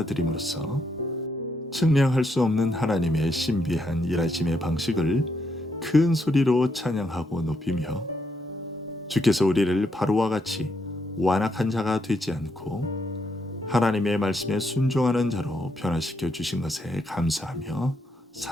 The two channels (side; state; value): both; normal; correlation 0.77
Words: 측량할 수 없는 하나님의 신비한 일하심의 방식을 큰 소리로 찬양하고 높이며 주께서 우리를 바로와 같이 완악한 자가 되지 않고 하나님의 말씀에 순종하는 자로 변화시켜 주신 것에 감사하며